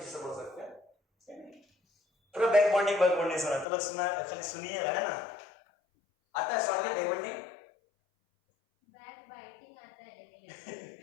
बोल सकते हैं, सेम है। पूरा बैक बॉन्डिंग सुना तो लोग सुना, खाली सुनिएगा है ना। आता है shortly back bonding, back biting आता है लेकिन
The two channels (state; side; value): drops out; right; at 3.7 s